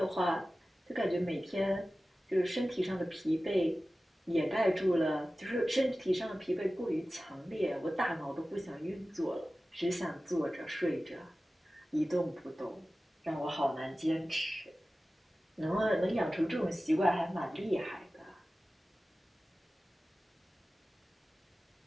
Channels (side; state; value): both; normal; correlation 0.96